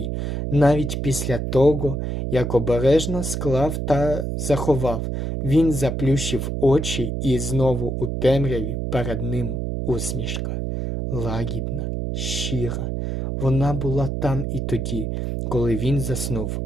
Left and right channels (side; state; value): right; noise; hum, 2 dB below the sound